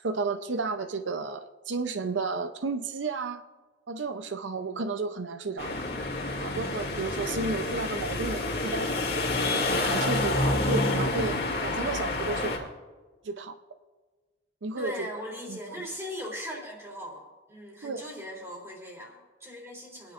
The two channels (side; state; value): both; normal; correlation 0.16